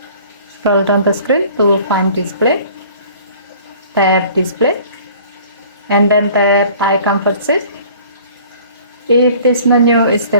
Scroll down the screen to find display. Tap display and then tap eye comfort seal. If this menu is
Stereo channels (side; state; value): both; inverted; correlation -0.50